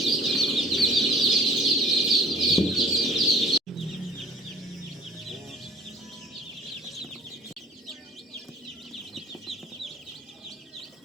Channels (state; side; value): normal; both; correlation 0.49